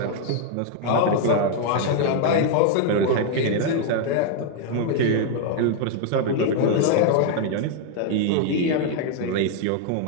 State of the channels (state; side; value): different; both; correlation 0.00